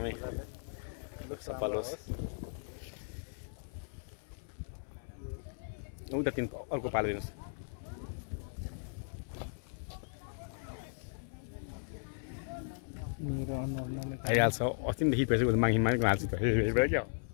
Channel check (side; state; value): right; silent; 53 dB below the other